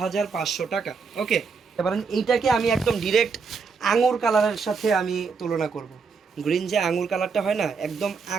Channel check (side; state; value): left; quieter; 5.2 dB